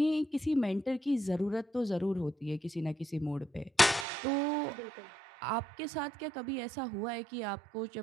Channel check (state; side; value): drops out; left; at 4.0 s